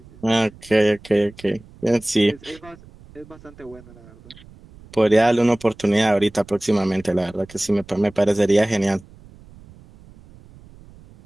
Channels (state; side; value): noise; right; rumble, 23 dB below the sound